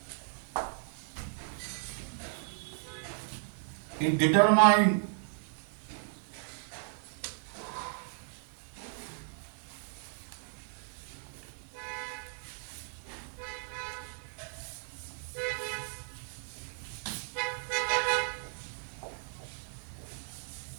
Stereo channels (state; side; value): silent; left; 54 dB below the other